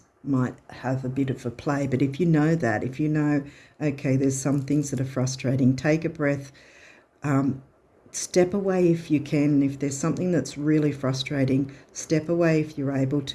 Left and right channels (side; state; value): both; identical; correlation 1.00